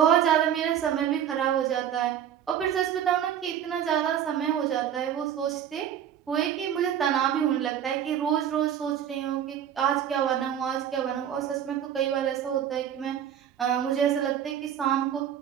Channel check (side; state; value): left; quieter; 9.6 dB